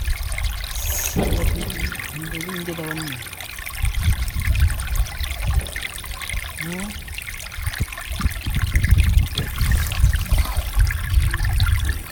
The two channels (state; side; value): identical; both; correlation 1.00